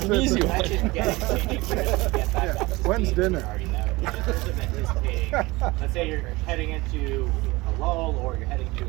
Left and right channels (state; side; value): quieter; left; 21.8 dB